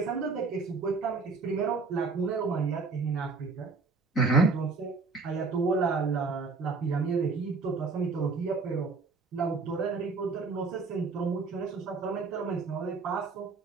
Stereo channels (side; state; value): left; quieter; 4.4 dB